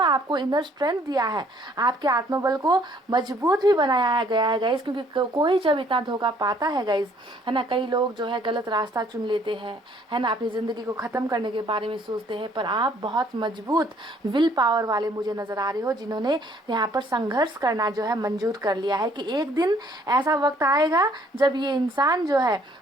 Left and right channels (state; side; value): normal; both; correlation 0.61